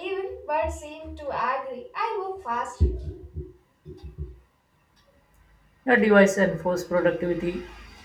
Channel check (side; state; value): both; identical; correlation 1.00